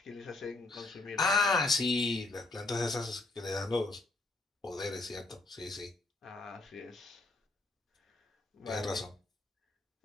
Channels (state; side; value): quieter; right; 3.1 dB